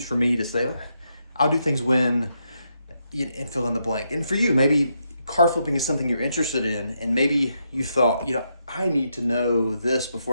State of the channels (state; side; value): inverted; both; correlation -0.81